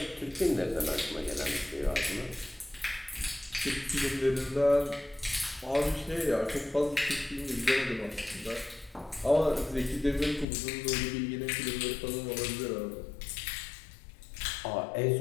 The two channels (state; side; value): drops out; right; at 10.5 s